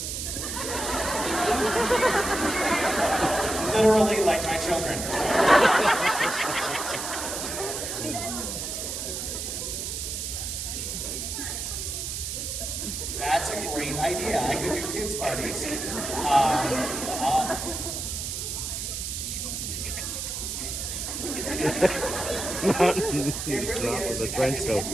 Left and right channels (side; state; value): right; noise; hiss, 4 dB below the sound